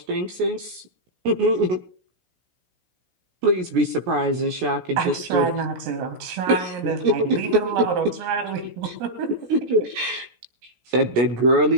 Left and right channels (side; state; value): left; late; 17 ms